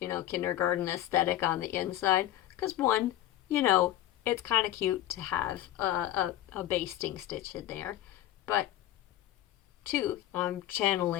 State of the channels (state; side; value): quieter; right; 13.4 dB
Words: know, kindergarten aesthetic on the inside, because one, you know, it's kind of cute to have a basting stitch in there. But 2, I'm